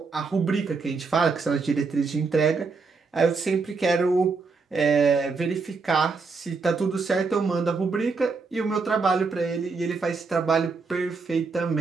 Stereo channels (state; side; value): quieter; left; 4.5 dB